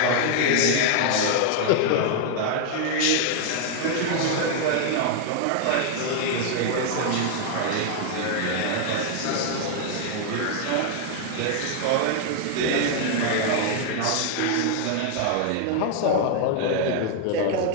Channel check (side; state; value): both; different; correlation 0.00